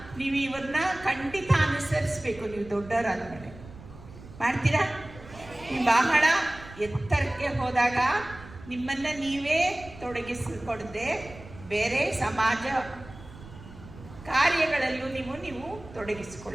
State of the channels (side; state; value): right; noise; rumble, 17 dB below the sound